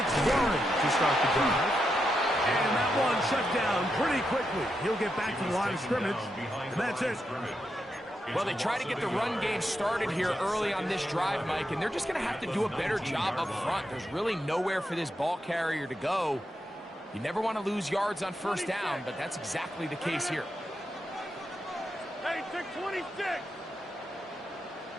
Warren to start the drive. And that one shut down pretty quickly. He'll get back to the line of scrimmage, and that's it. Well, they try to get the run game started here early on this drive, Mike, and they're just going to have to do a better job up front. There's really nowhere for this ball carrier to go. You never want to lose yards on 1st down, but that's exactly the case here. Hey, take 26.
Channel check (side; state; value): both; normal; correlation 0.84